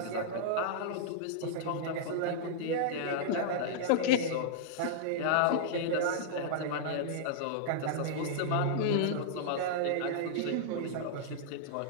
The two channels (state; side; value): different; both; correlation -0.02